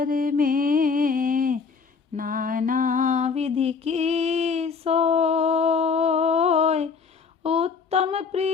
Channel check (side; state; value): right; quieter; 5.5 dB